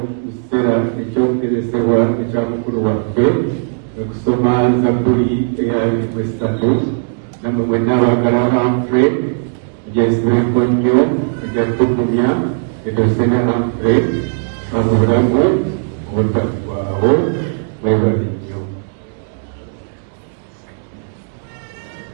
kiseera ekyokuteresebwa ekya mukulu waffe okusoma Zabbuli eya 3 namwe mwenna abaagala Humphrey egyesibeko nnyo egyatugumya edosene Humphrey mu bulamu obutaggwaawo mwebale nnyo.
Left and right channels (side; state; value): left; silent; 69 dB below the other